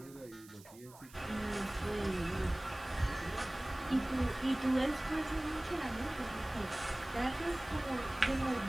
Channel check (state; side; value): noise; right; hiss, 21 dB below the sound